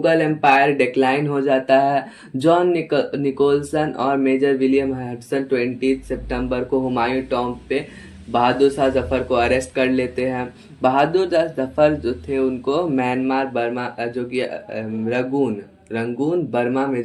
एम्पायर डिक्लाइन हो जाता है। जॉन निकोलसन और मेजर विलियम हडसन 20 सितंबर को हुमायूं टॉम्ब पे बहादुर शाह जफर को अरेस्ट कर लेते हैं। बहादुर शाह जफर जो थे उनको म्यांमार बर्मा, जो कि रंगून बर्मा में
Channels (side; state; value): both; identical; correlation 1.00